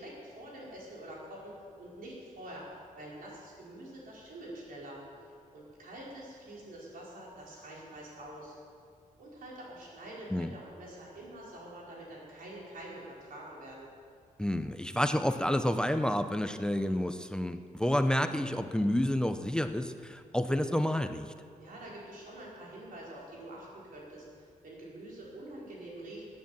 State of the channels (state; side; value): normal; both; correlation 0.91